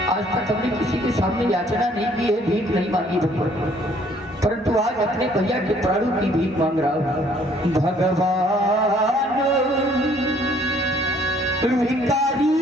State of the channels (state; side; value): normal; both; correlation 0.61